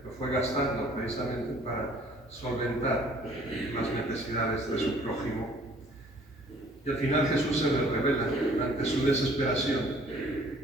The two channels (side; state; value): both; normal; correlation 0.56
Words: lo fue gastando precisamente para solventar las necesidades de su prójimo. Y al final Jesús se le revela ante su desesperación.